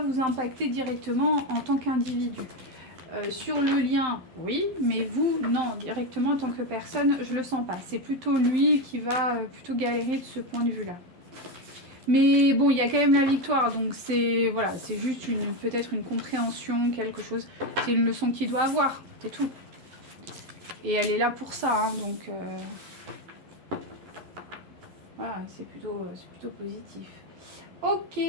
impacter directement en tant qu'individu. Sur le lien, oui, mais vous, non, directement en tant que personne, je le sens pas. C'est plutôt lui qui va plutôt galérer de ce point de vue-là. Mais bon, il y a quand même la victoire, donc c'est voilà, c'est juste peut-être une compréhension, quelque chose. C'est une leçon qu'il doit avoir, c'est tout. Et elle est là pour ça, hein, donc voilà, c'est plutôt positif. Ok,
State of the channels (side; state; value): left; late; 12 ms